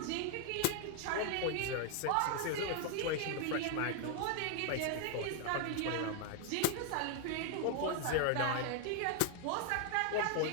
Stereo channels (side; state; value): both; different; correlation 0.00